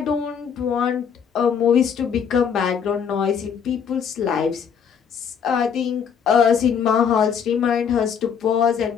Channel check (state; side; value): quieter; right; 7.2 dB